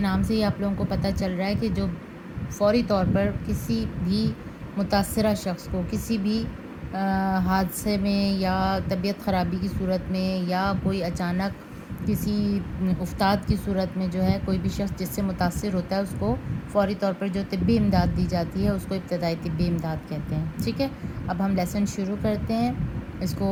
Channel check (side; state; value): both; identical; correlation 1.00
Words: سے ہی آپ لوگوں کو پتہ چل رہا ہے کہ جو فوری طور پر کسی بھی متاثرہ شخص کو کسی بھی حادثے میں یا طبیعت خرابی کی صورت میں یا کوئی اچانک کسی افتاد کی صورت میں جو ہے کوئی بھی شخص جس سے متاثر ہوتا ہے اس کو فوری طور پر جو طبی امداد دی جاتی ہے اس کو ابتدائی طبی امداد کہتے ہیں۔ ٹھیک ہے، اب ہم لیسن شروع کرتے ہیں۔ اس